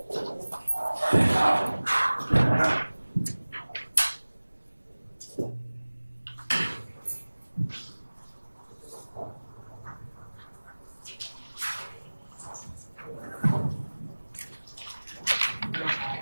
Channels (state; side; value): inverted; both; correlation -1.00